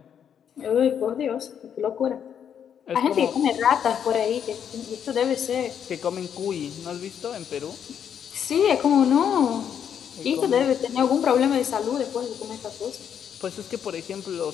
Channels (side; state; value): right; quieter; 8.4 dB